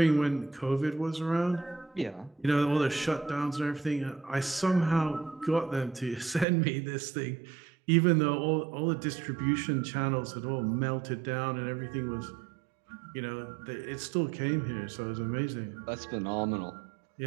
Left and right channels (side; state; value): left; drops out; at 6.5 s